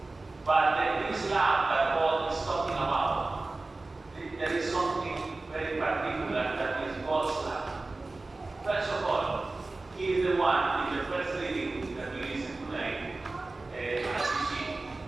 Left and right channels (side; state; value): left; quieter; 3.3 dB